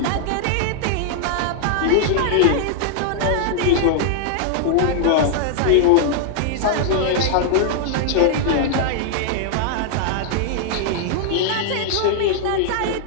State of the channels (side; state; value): both; different; correlation -0.01